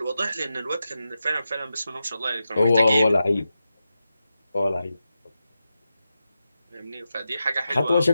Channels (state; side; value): inverted; both; correlation -0.90